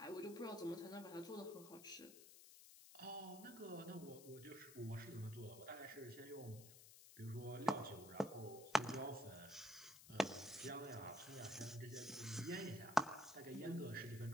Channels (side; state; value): left; noise; hiss, 15 dB below the sound